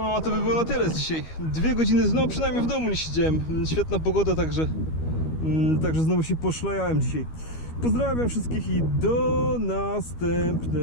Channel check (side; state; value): right; late; 13 ms